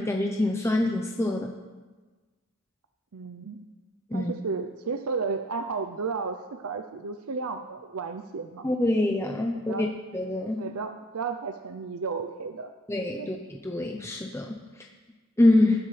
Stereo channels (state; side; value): normal; both; correlation 0.69